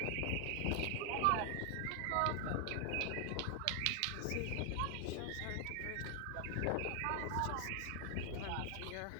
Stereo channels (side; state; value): both; different; correlation 0.00